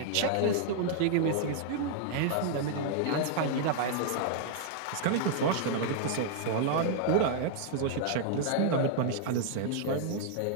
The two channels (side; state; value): both; different; correlation -0.01